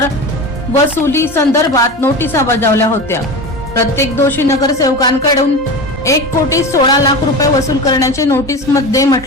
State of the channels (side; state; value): both; normal; correlation 0.28